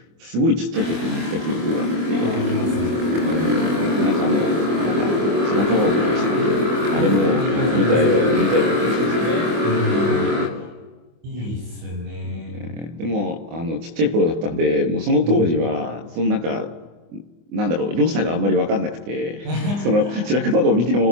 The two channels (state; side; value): late; left; 24 ms